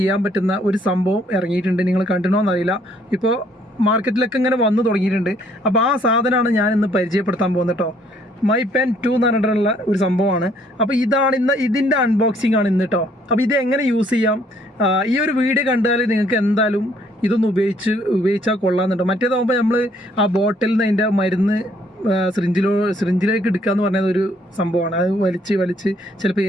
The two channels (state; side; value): normal; both; correlation 0.65